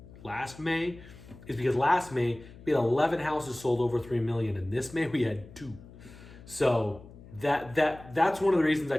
May, is because last May we had 11 houses sold over 3 million, and this May we had 2. So that's one of the reasons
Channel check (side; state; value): left; noise; hum, 19 dB below the sound